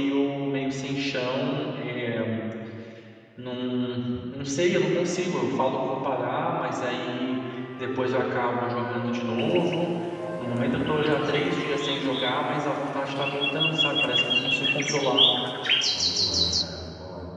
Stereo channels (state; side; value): identical; both; correlation 1.00